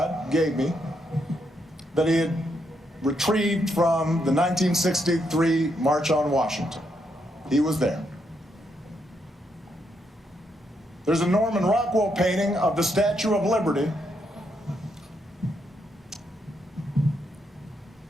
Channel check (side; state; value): both; normal; correlation 0.78